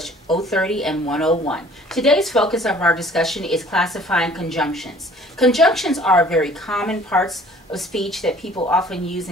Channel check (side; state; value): both; normal; correlation 0.52